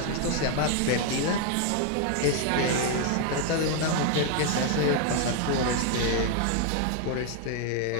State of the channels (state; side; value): different; both; correlation 0.00